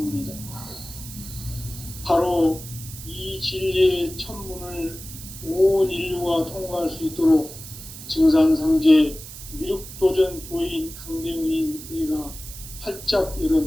바로 이 진리의 첫 문을 온 인류가 통과할 수 있도록 증산상제 미륵도전 도인 강대훈인 내가 활짝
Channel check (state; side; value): noise; right; hiss, 13 dB below the sound